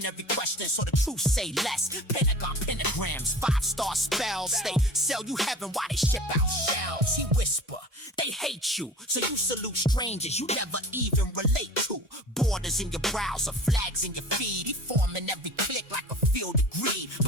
every question so the truth say less. Pentagon pentagrams, 5-star spells. They sell you heaven while they ship out shells. He whisper, they hate you, so you salute strangers you never even relate to. Borders in your browser, flags in your feed. He forming every click like a field of greed.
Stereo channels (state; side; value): normal; both; correlation 0.40